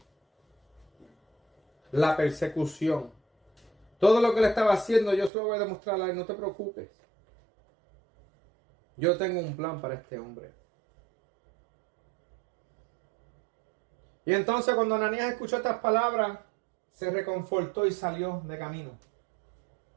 la persecución. Todo lo que le estaba haciendo yo se lo voy a demostrar a él, no te preocupes. Yo tengo un plan para este hombre. Y entonces cuando Ananías escuchó estas palabras, se reconfortó y salió de camino.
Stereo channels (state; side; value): drops out; left; at 5.3 s